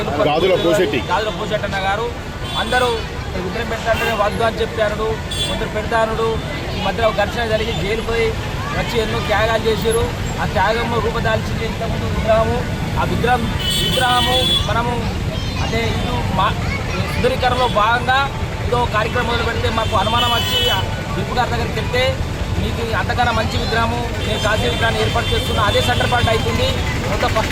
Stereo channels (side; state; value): both; identical; correlation 1.00